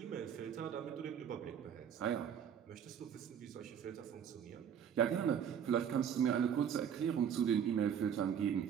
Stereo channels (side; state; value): left; quieter; 8.4 dB